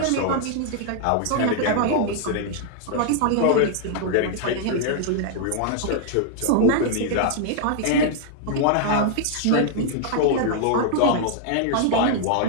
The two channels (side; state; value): both; different; correlation -0.01